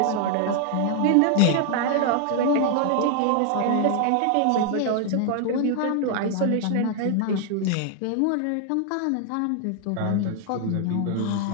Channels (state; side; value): different; both; correlation 0.00